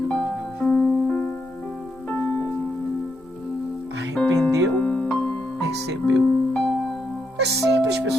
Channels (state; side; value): normal; both; correlation 0.80